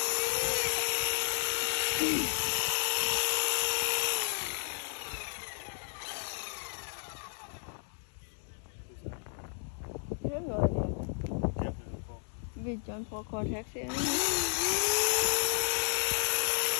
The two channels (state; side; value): silent; right; 56 dB below the other